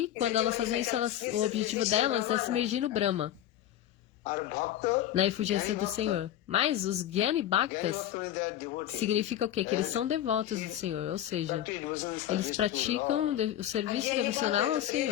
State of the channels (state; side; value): quieter; right; 11.8 dB